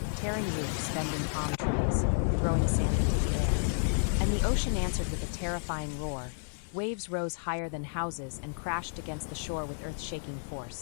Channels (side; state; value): right; silent; digital silence